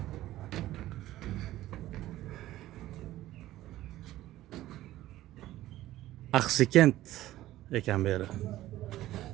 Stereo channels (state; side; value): quieter; left; 15.1 dB